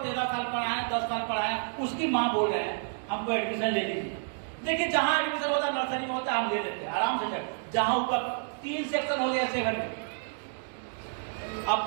13 साल पढ़ाए, 10 साल पढ़ाए, उसकी माँ बोल रहे हैं हमको एडमिशन ले लीजिए। देखिए जहां एडमिशन होता है, नर्सरी में होता है, हम ले लेते हैं आराम से, जहां ऊपर 3 सेक्शन हो गया 7 में, अब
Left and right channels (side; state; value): left; silent; digital silence